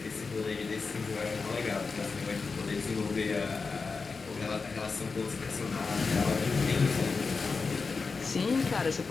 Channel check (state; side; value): quieter; right; 4.6 dB